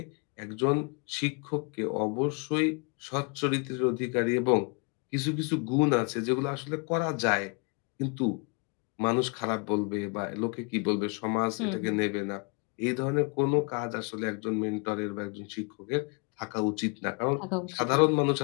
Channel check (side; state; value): right; quieter; 35.8 dB